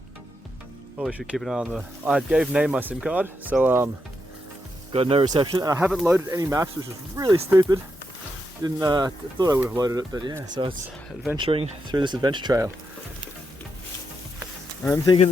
Probably should keep an eye on the... I gave Nay my SIM card, so got no reception. And I haven't loaded any maps, which is really stupid. Didn't thought I would have loaded it, but yeah, so it's adventuring through this adventure trail. I'm thinking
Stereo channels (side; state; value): both; normal; correlation 0.83